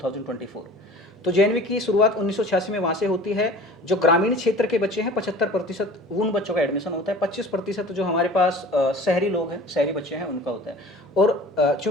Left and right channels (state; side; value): normal; both; correlation 0.43